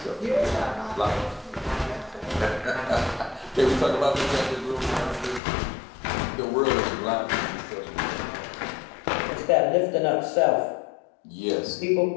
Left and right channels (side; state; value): right; drops out; at 5.4 s